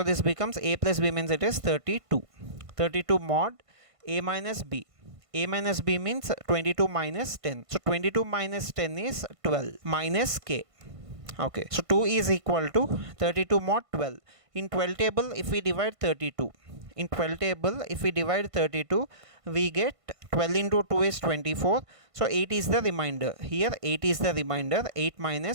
this becomes A plus B means it is 32. 32 mod A minus B. A minus B means 22 minus 10. So 22 minus 10 is 12 minus K. Okay, so 2 is equal to 32 mod 12. In 12 table if we divide 32. In 12 table if we divide 32, we get 12 into 2 is 24. So 8 is the remainder. Here 8 is the remainder. 8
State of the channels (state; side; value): late; left; 1.5 ms